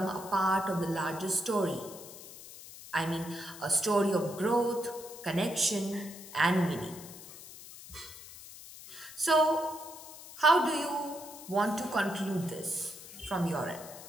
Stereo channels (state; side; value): noise; left; hiss, 15 dB below the sound